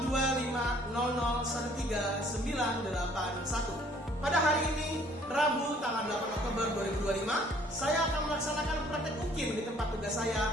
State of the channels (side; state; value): both; normal; correlation 0.59